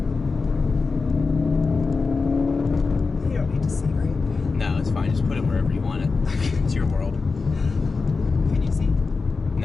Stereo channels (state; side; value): quieter; right; 4.3 dB